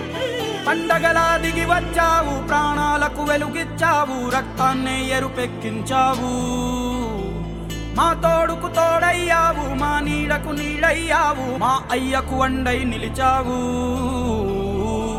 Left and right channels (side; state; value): both; identical; correlation 1.00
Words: పండగలా దిగి వచ్చావు, ప్రాణాలకు వెలుగిచ్చావు, రక్తాన్నే ఎరుపెక్కించావు. మా తోడుకు తోడయ్యావు, మా నీడకు నీడయ్యావు, మా అయ్యకు అండై నిలిచావు.